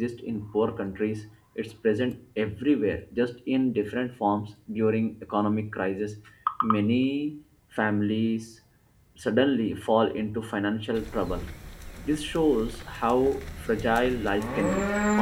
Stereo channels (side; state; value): both; identical; correlation 1.00